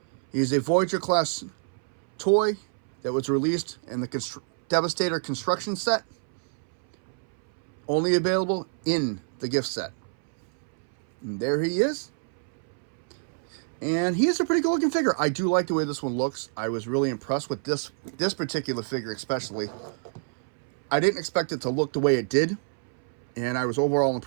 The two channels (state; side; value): silent; left; 60 dB below the other